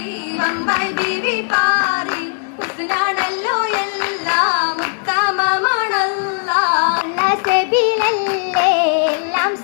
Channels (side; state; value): right; silent; 66 dB below the other